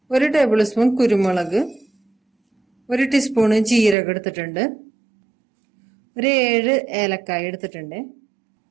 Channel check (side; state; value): left; drops out; at 4.0 s